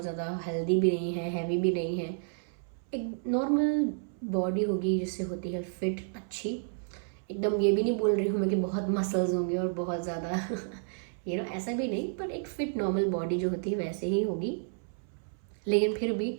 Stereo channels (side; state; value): left; silent; 57 dB below the other